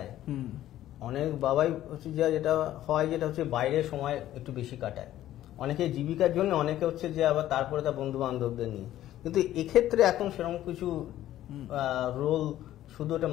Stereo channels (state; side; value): quieter; right; 13.2 dB